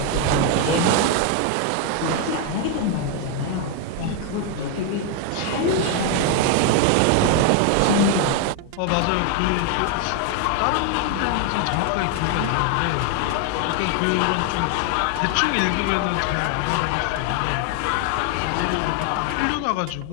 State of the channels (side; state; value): both; different; correlation 0.00